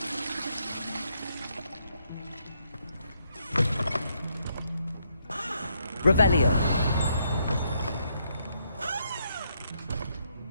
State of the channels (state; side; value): inverted; both; correlation -0.75